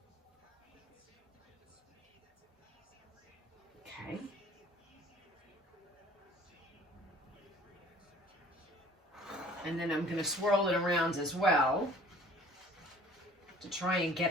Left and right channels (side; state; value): both; normal; correlation 0.51